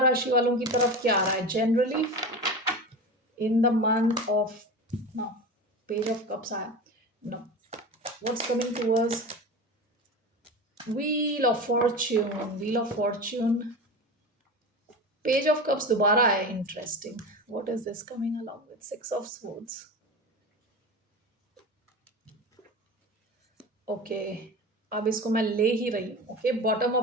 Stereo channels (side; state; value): both; normal; correlation 0.28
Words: वालों की तरफ क्या आ रहा है generally in the month of, no, page of cups आया, no, what's coming towards wheel of fortune. Wheel of fortune, page of cups दोबारा आया, interesting. What is this coming along with six of swords. Okay, अब इसको मैं ले ही रही हूँ। Okay, bottom